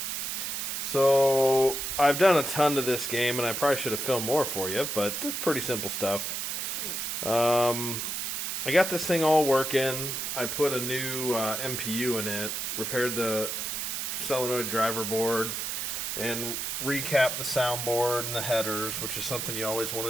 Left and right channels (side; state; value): right; noise; hiss, 3 dB below the sound